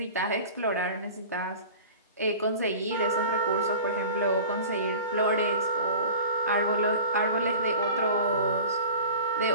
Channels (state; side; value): inverted; both; correlation -0.38